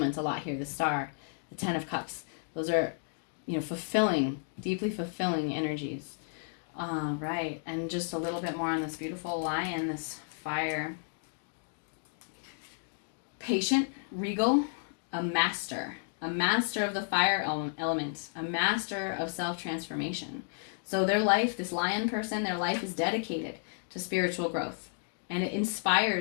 a lot here. The Star, the Ten of Cups, those are, fulfilling, deeply fulfilling energies. Right, and just a little bit more on this beautiful lion, this fire. Patient, regal, a master of the fire element, a master of self-transformation. So their life, this lion person, their life is dedicated to spiritual growth, and it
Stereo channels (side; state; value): right; silent; digital silence